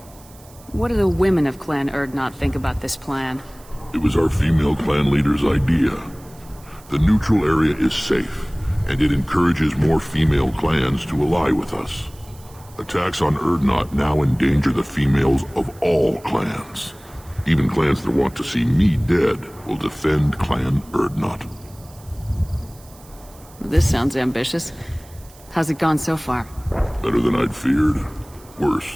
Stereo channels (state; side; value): noise; right; hiss, 24 dB below the sound